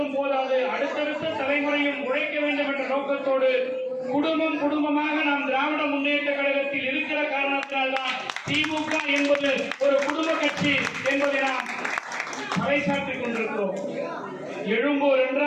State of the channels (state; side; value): identical; both; correlation 1.00